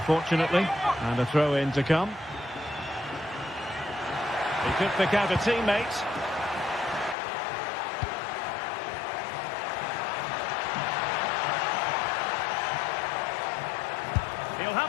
and a throw-in to come. He could pick out a teammate. He'll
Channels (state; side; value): drops out; right; at 7.2 s